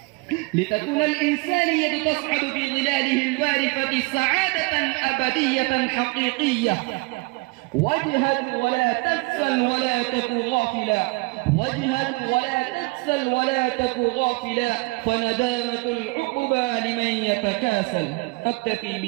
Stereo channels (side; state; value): left; quieter; 26.9 dB